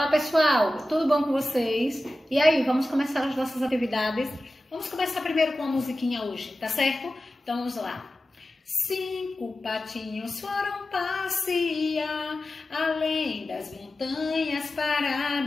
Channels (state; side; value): normal; both; correlation 0.94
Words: pessoal, tudo bom com vocês? E aí, vamos começar as nossas atividades? Vamos começar primeiro com a musiquinha hoje, tá certo? Então vamos lá. 5 patinhos foram passear além das montanhas para